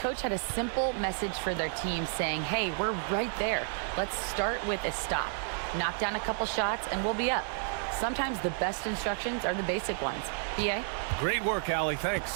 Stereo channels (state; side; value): silent; left; 57 dB below the other